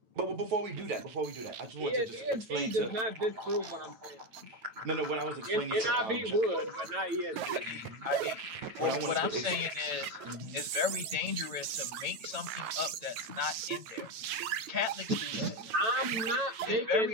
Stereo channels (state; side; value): late; left; 9.3 ms